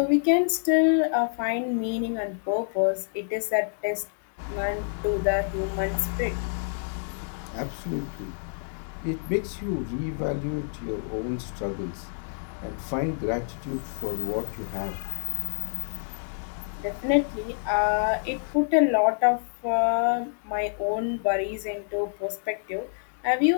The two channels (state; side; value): silent; right; digital silence